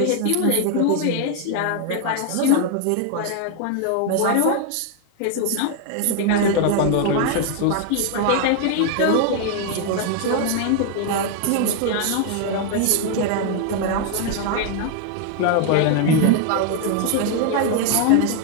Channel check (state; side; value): different; both; correlation 0.00